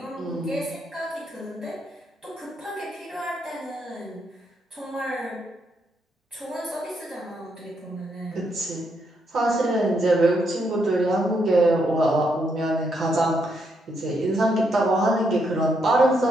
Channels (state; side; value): normal; both; correlation 0.77